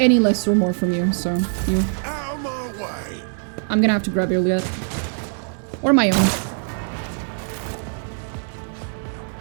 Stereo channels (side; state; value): left; silent; 59 dB below the other